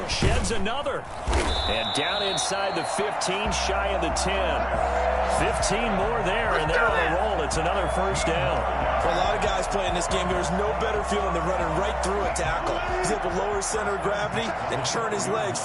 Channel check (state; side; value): identical; both; correlation 1.00